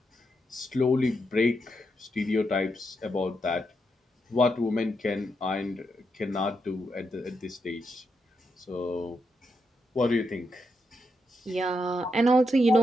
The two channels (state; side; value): normal; both; correlation 0.82